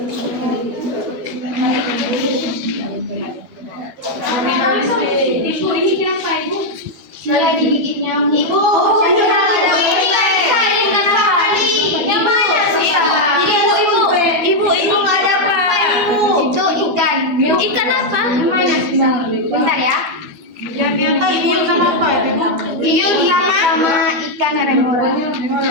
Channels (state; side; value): late; left; 12 ms